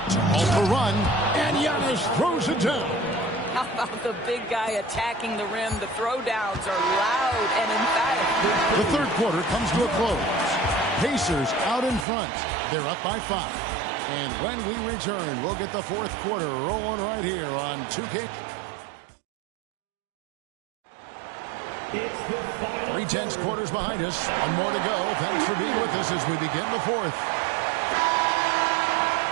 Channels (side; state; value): left; drops out; at 12.1 s